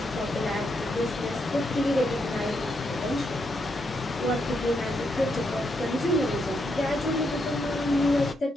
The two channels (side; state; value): both; normal; correlation 0.80